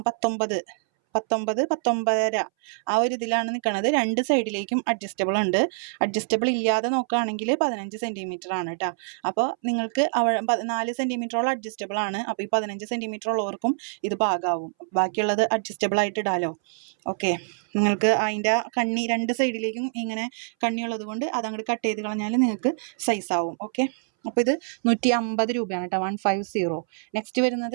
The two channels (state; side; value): silent; left; 61 dB below the other